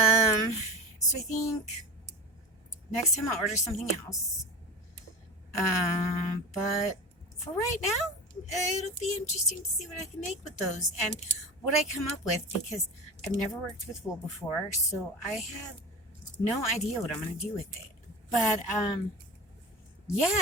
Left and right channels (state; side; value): normal; both; correlation 0.29